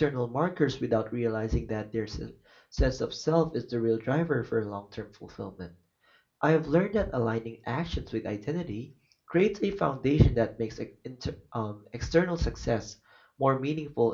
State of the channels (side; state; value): both; identical; correlation 1.00